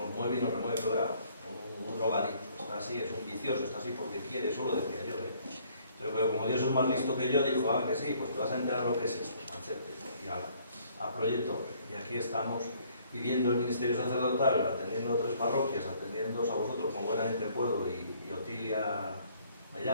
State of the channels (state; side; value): inverted; both; correlation -0.62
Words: mueve y nos remueve, pero un drogadicto, está así, es un vicioso, está así porque quiere, eso lo decía yo, pero como Dios es más listo que yo, dijo, que sí, pues te vas a enterar lo que es esto, machete, y a Proyecto. Y aquí estamos viviendo el ministerio sacerdotal, atendiendo a 3 parroquias, atendiéndoos a vosotros como buenamente puedo, y Otilia me